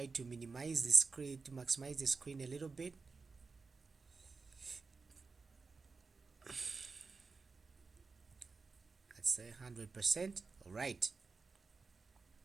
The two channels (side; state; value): left; quieter; 4.4 dB